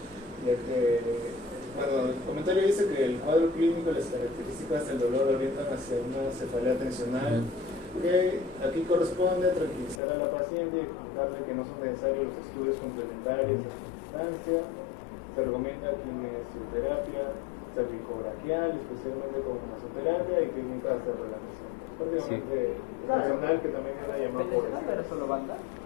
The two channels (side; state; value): right; drops out; at 10.0 s